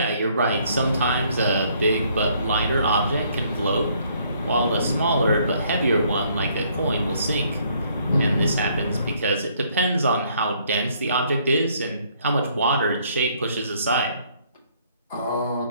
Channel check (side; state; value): both; inverted; correlation -0.66